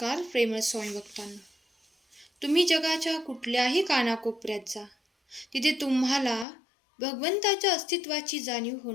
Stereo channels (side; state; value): right; drops out; at 6.5 s